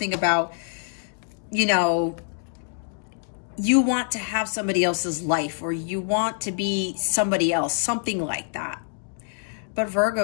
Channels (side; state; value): right; silent; digital silence